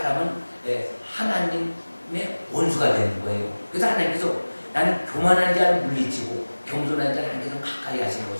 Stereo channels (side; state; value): both; inverted; correlation -1.00